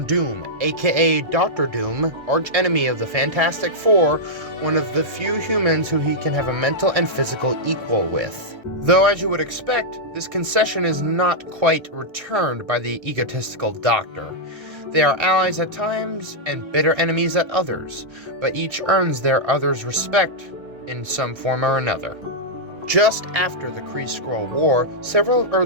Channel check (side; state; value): left; late; 1.3 ms